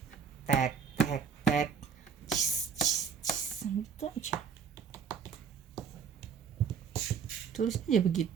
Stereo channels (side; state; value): left; quieter; 6.8 dB